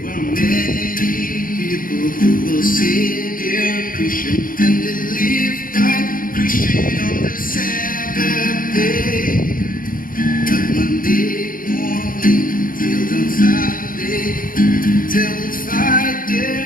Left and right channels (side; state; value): right; late; 0.40 ms